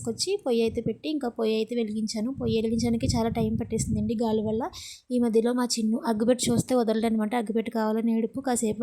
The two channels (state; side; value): identical; both; correlation 1.00